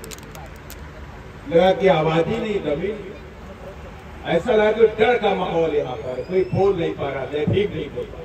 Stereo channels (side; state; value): both; identical; correlation 1.00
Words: लगा कि आवाज ही नहीं दबी। ऐसा लगा कि डर का माहौल यहाँ पर, कोई बोल नहीं पा रहा, जय भीम नहीं बोल पा।